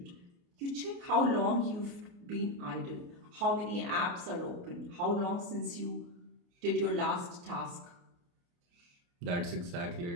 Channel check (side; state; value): left; late; 29 ms